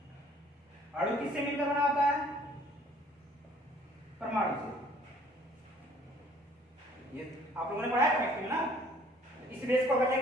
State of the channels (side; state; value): both; normal; correlation 0.57